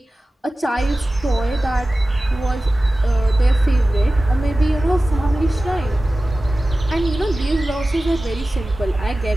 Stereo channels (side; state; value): both; normal; correlation 0.96